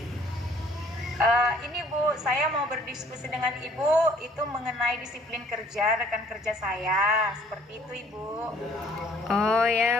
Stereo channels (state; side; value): normal; both; correlation 0.57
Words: ini Bu, saya mau berdiskusi dengan Ibu itu mengenai disiplin kerja rekan kerja saya. Seperti itu Ibu. Oh ya,